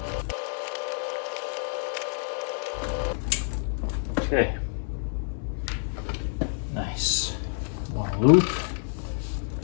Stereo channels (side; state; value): right; silent; digital silence